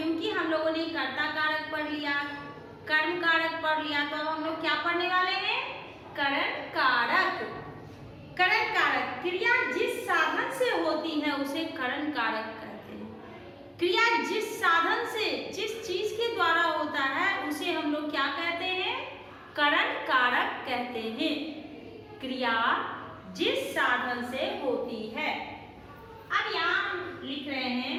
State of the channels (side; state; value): both; identical; correlation 1.00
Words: हम लोगों ने कर्ता कारक पढ़ लिया, कर्म कारक पढ़ लिया, तो अब हम लोग क्या पढ़ने वाले हैं? करण कारक। करण कारक क्रिया जिस साधन से होती है उसे करण कारक कहते हैं। क्रिया जिस साधन से, जिस चीज के द्वारा होता है उसे हम लोग क्या कहते हैं? करण कारक कहते हैं। क्रिया जिस साधन से होती है। अब यहां लिख रहे